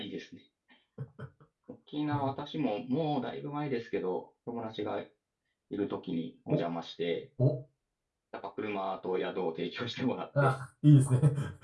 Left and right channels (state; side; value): identical; both; correlation 1.00